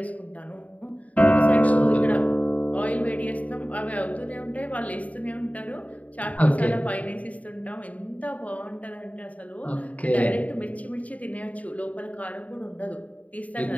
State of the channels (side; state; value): right; late; 0.070 ms